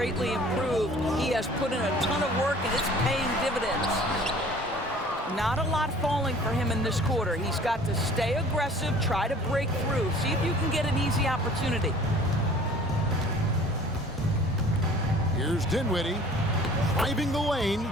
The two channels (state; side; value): normal; both; correlation 0.49